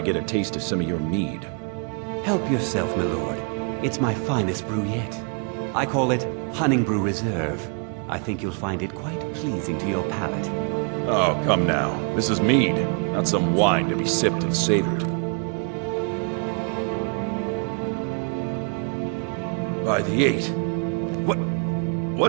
get a taste of some of your mead? Help yourself, my lord. It's my finest brew yet. I call it Honningbrew Reserve. I think you'll find it quite pleasing to your palate. Oh, come now. This is mead, not some wine to be sipped and savored. By the 8.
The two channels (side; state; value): left; quieter; 39.8 dB